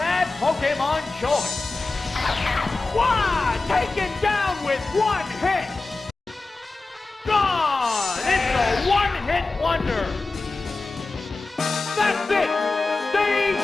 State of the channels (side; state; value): right; quieter; 3.5 dB